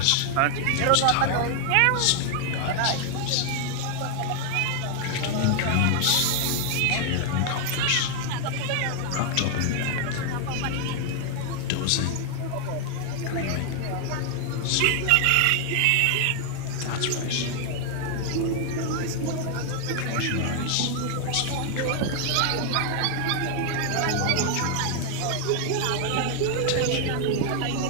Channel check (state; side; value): different; both; correlation 0.00